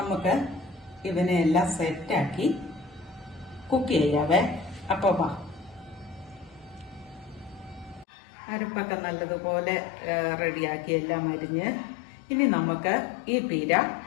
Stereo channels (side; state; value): right; drops out; at 8.1 s